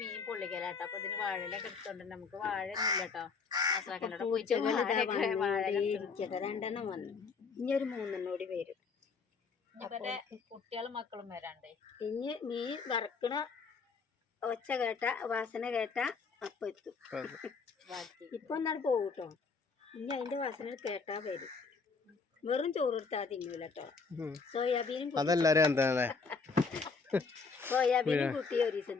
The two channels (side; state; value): right; quieter; 4.9 dB